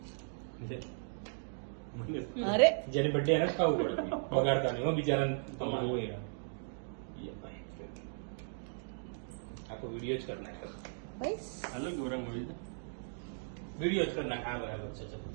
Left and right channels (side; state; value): left; silent; digital silence